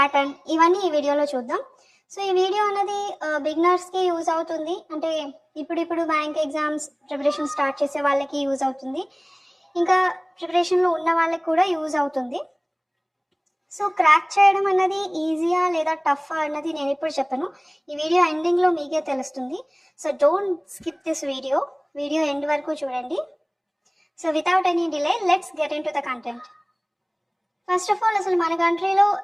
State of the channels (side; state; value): both; identical; correlation 1.00